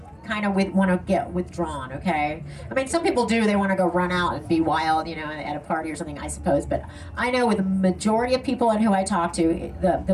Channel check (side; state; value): both; identical; correlation 1.00